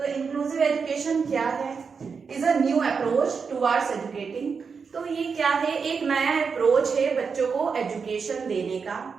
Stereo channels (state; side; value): quieter; left; 5.6 dB